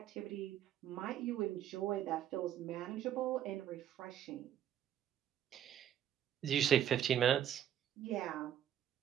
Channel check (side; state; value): left; quieter; 10.4 dB